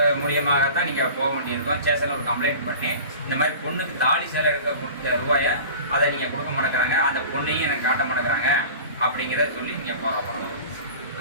மூலியமாகத்தான் நீங்கள் போக வேண்டியிருக்கும். ஸ்டேஷனில் ஒரு கம்ப்ளைண்ட் பண்ணி இந்த மாதிரி பொண்ணுக்கு தாலி சேலை எடுக்க கொடுத்த ரூபாயை அதை நீங்கள் கொடுக்க மாட்டேங்கிறாங்க, அந்த பொண்ணையும் எனக்கு காட்ட மாட்டேங்கிறாங்க அப்படிங்கிறத சொல்லி நீங்கள் போகிற பண்ணணும்.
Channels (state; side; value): inverted; both; correlation -0.38